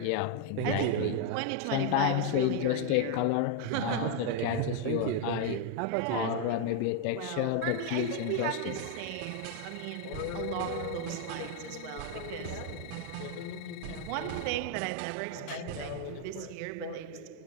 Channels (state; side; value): different; both; correlation 0.01